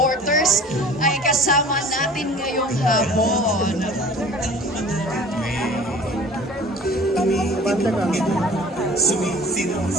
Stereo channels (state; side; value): normal; both; correlation 0.45